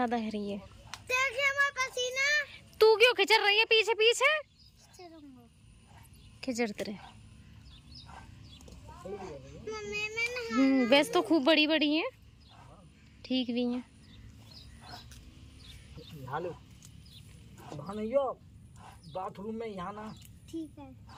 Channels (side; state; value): both; identical; correlation 1.00